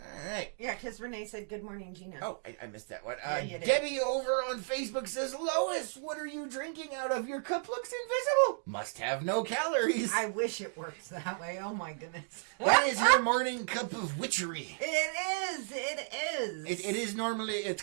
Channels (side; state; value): left; silent; digital silence